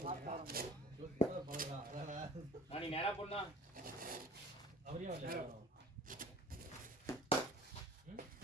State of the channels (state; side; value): normal; both; correlation 0.45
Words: நீ நேரா போனா அவரையும் வரல.